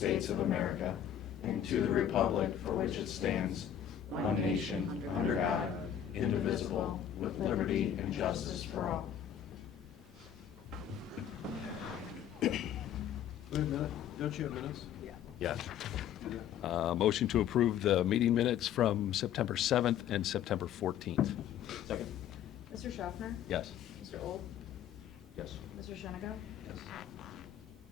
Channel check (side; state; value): right; quieter; 9.8 dB